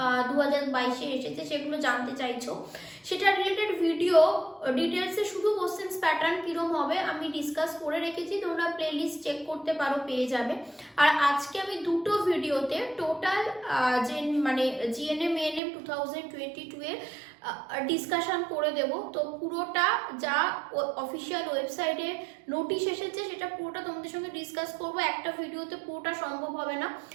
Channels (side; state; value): left; drops out; at 15.6 s